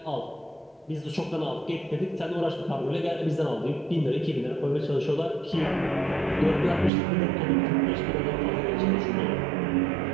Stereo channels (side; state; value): left; drops out; at 6.9 s